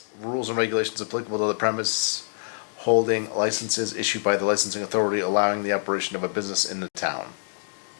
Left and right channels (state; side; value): silent; right; digital silence